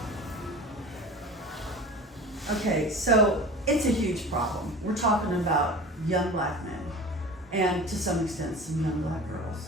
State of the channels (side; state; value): both; normal; correlation 0.37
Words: Okay, so it's a huge problem. We're talking about young black men and to some extent some young black